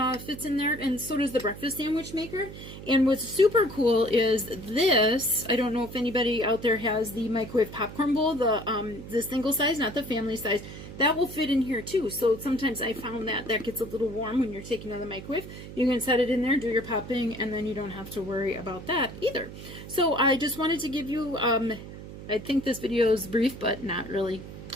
fits in there, and so does the breakfast sandwich maker. And what's super cool is this. I don't know if anybody out there has the microwave popcorn bowl, the single size, not the family size. That will fit in here too. So sometimes I found that gets a little warm when you're taking it out of the microwave. You can set it in there, do your popping, and then you don't have to worry about that either. So I just wanted to give you, I think this video is brief, but not really.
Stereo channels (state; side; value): noise; right; hum, 12 dB below the sound